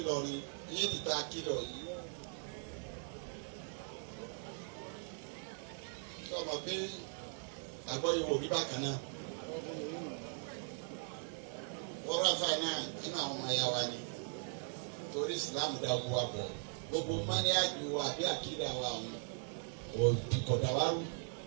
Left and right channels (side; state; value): left; silent; 51 dB below the other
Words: yìí ti ta kílọ̀ yìí. sọ ma pé àgbọ̀ ìwò rí bákan náà. wọ́n rà fáì náà nínú àwọn ọmọ ẹ̀yà wa ni torí ìsìlámù dá gbogbo wa bọ̀ gbogbo mọ́níyàjú wa àbí àkídà wa ọ̀hún òdìkọ̀dà wa rú.